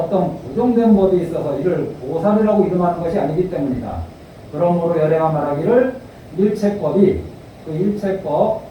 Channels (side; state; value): both; identical; correlation 1.00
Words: 고정된 법이 있어서 이를 보살이라고 이름하는 것이 아니기 때문이다. 그러므로 열애가 말하기를 일체법이, 그 일체법